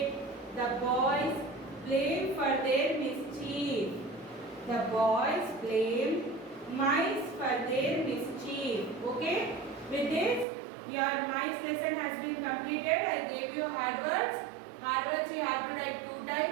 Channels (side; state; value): left; drops out; at 10.5 s